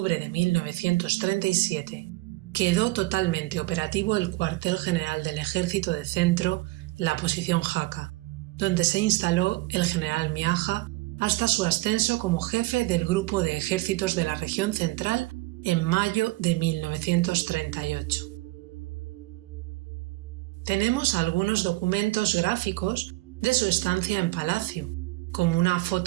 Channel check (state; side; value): quieter; left; 20.4 dB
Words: de 1937, quedó totalmente operativo el cuartel general del Ejército de Centro, la posición Jaca, donde se instaló el general Miaja hasta su ascenso como jefe del grupo de ejércitos de la región central en mayo de 1938. Tenemos algunos documentos gráficos de su estancia en Palacio, como una